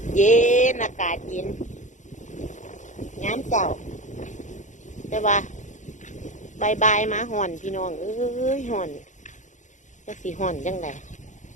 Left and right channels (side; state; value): right; late; 0.36 ms